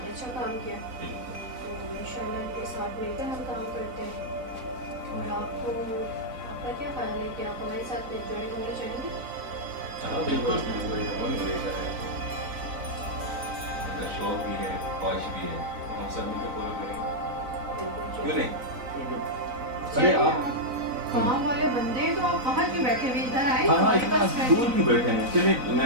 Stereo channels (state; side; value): late; left; 4.0 ms